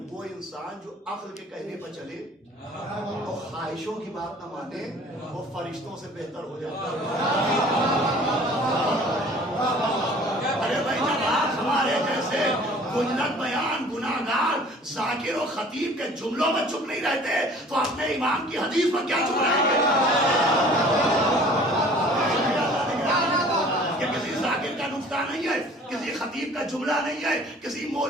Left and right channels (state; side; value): normal; both; correlation 0.49